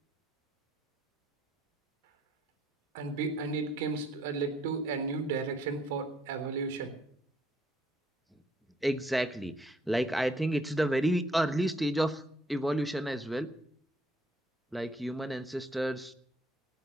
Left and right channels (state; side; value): normal; both; correlation 0.67